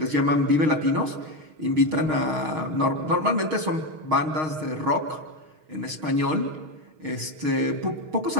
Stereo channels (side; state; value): left; late; 6.4 ms